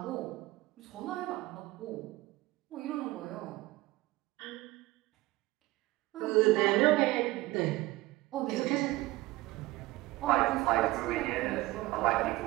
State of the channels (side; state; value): left; quieter; 19.3 dB